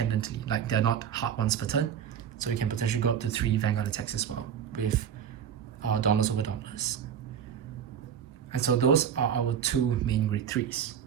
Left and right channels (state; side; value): quieter; left; 8.4 dB